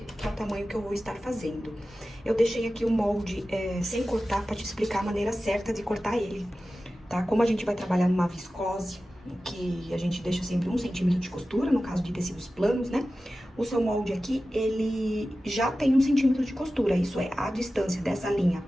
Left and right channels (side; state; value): both; normal; correlation 0.95